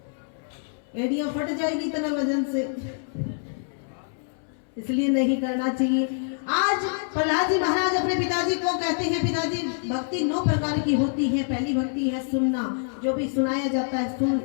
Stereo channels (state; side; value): silent; right; 61 dB below the other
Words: एड़ियां फट जाएगी इतना वजन से, इसलिए नहीं करना चाहिए। आज प्रहलाद जी महाराज अपने पिताजी को कहते हैं, पिताजी भक्ति 9 प्रकार की होती है। पहली भक्ति है सुनना, जो भी सुनाया जाता है सुन,